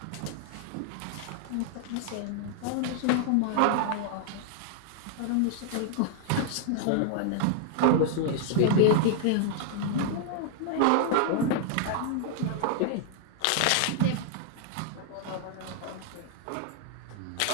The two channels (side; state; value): both; different; correlation -0.01